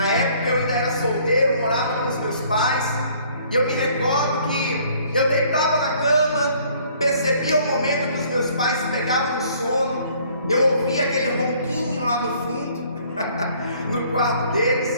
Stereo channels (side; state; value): both; inverted; correlation -0.59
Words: época eu ainda era solteiro, morava com os meus pais, e eu me recordo que eu deitava na cama, percebia o momento que os meus pais pegavam no sono, eu ouvia aquele ronquinho lá no fundo, no quarto